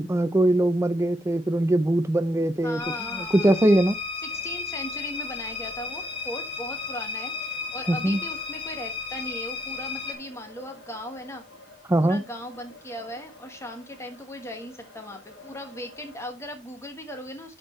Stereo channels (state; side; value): normal; both; correlation 0.77